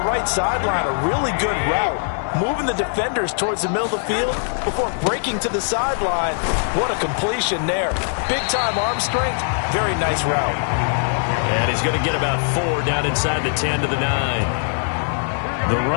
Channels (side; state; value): right; silent; digital silence